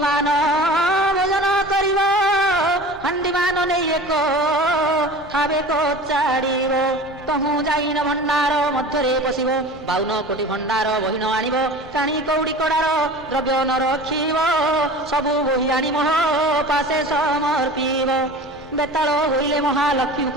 ଭୋଜନ କରିବ, ହାଣ୍ଡିମାନ ନେଇ ଏକ ଖାବେ କଚାଡ଼ିବ। ତହୁଁ ଯାଇନ ଭଣ୍ଡାର ମଧ୍ୟରେ ପଶିବ, 52 କୋଟି ଭଣ୍ଡାର ବହିନ ଆଣିବ। କାଣି କଉଡ଼ି କଡ଼ାର ଦ୍ରବ୍ୟ ନ ରଖିବ, ସବୁ ବହି ଆଣି ମୋହ ପାଶେ ସମର୍ପିବ। ବେତାଳ ହୋଇଲେ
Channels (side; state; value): both; normal; correlation 0.37